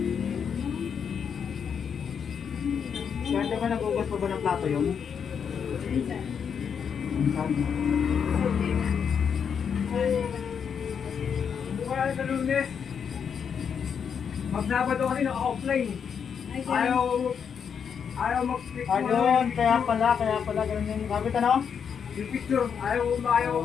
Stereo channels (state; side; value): quieter; right; 7.1 dB